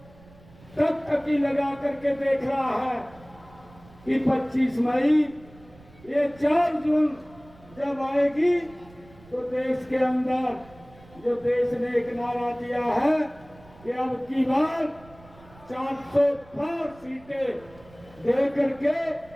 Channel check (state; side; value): noise; right; rumble, 24 dB below the sound